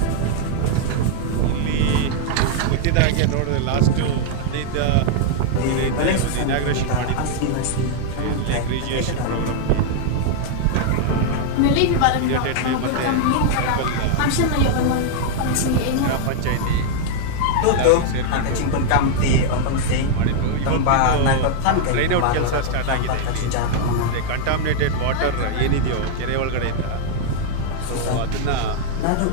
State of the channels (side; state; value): both; different; correlation -0.01